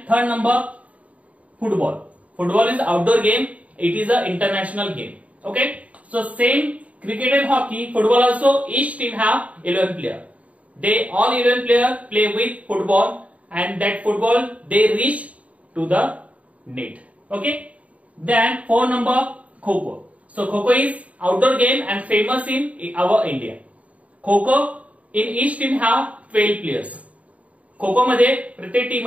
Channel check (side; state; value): left; late; 0.067 ms